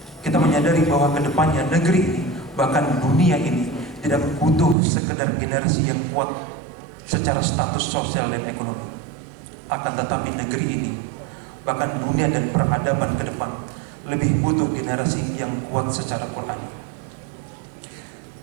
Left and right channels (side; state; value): left; drops out; at 4.8 s